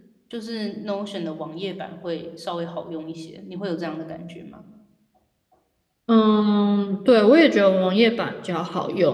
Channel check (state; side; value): identical; both; correlation 1.00